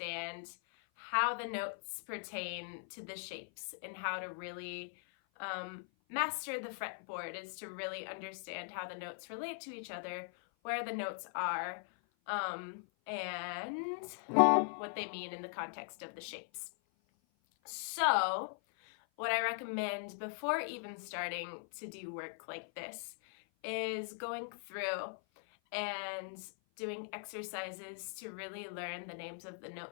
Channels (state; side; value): silent; right; 51 dB below the other